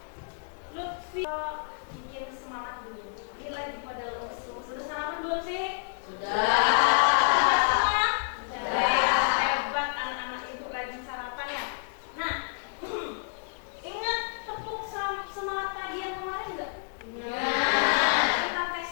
Lutfi? Bikin semangat dulu. Ini lagi pada lemes. Sudah sarapan belum sih? Sudah. Hebat anak-anak ibu rajin sarapan ya. Nah, ingat tepuk semangat pagi yang kemarin enggak? Kita tes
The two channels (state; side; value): silent; right; digital silence